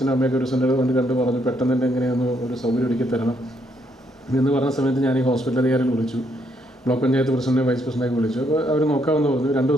അമ്മയൊക്കെ ഒരു സെൻ്റർ കൊണ്ട് കണ്ടു പറഞ്ഞു, പെട്ടെന്ന് തന്നെ എങ്ങനെയൊന്ന് ഒരു സൗകര്യം ഒരുക്കി തരണം എന്ന് പറഞ്ഞ സമയത്ത് ഞാൻ ഈ ഹോസ്പിറ്റൽ അധികാരികൾ വിളിച്ചു, ബ്ലോക്ക് പഞ്ചായത്ത് പ്രസിഡന്റ് വൈസ് പ്രസിഡൻ്റൊക്കെ വിളിച്ചു. അപ്പോൾ അവർ നോക്കാമെന്ന് പറഞ്ഞു. 2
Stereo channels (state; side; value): normal; both; correlation 0.73